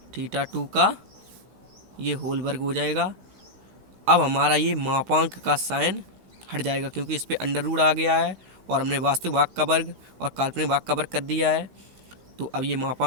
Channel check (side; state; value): left; late; 16 ms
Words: theta 2 का ये होल वर्ग हो जाएगा। अब हमारा ये मापांक का साइन हट जाएगा क्योंकि इस पर अंडर रूट आ गया है, और हमने वास्तविक भाग का वर्ग और काल्पनिक भाग का वर्ग कर दिया है। तो अब ये